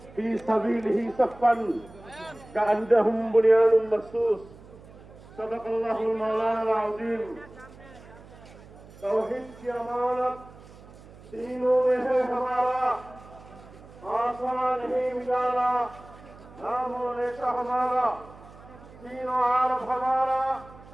في سبيله صفا كأنهم بنيان مرصوص. صدق الله المولانا العظيم. तौहीद की अमानत तीनों में है हमारा, आसमान ही मिलाना नामों नेशा हमारा, तीनों आरब हमारा,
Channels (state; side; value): noise; right; hum, 20 dB below the sound